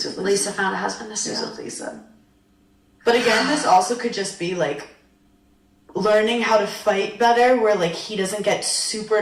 with Lisa. Lisa found a husband to He's steal. with Lisa. But again, this also could just be, like, learning how to fight better, where, like, he doesn't get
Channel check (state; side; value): identical; both; correlation 1.00